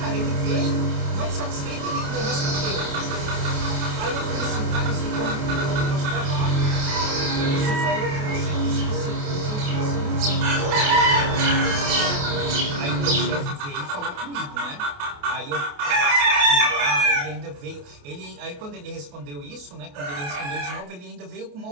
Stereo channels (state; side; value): late; left; 28 ms